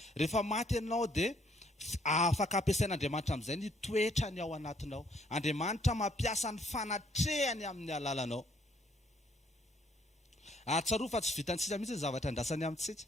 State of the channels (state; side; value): normal; both; correlation 0.67